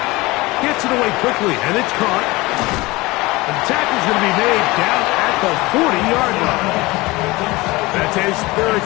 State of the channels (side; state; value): right; quieter; 21.6 dB